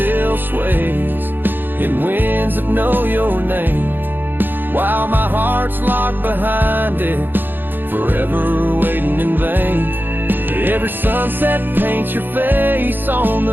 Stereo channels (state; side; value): late; left; 0.093 ms